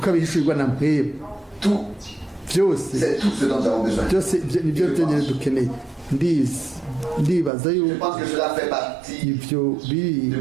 na mpwebwe. Tout, Byose c'est tout ce dont nous avons besoin. byose nibyo byonyine dukeneye. Ndibaza Je yuko pense que cela fait partie ibyo biri de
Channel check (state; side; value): drops out; left; at 7.5 s